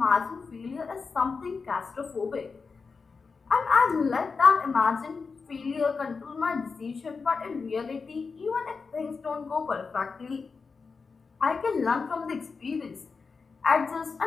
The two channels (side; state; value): right; quieter; 4.8 dB